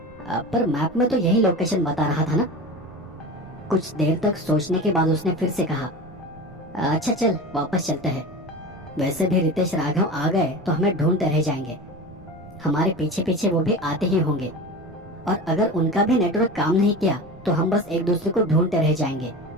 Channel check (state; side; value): noise; right; rumble, 22 dB below the sound